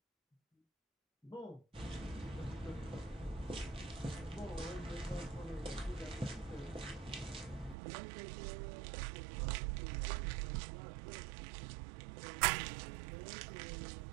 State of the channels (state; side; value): drops out; left; at 7.8 s